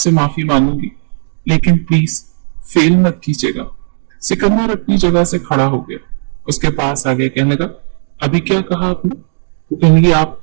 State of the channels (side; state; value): left; silent; digital silence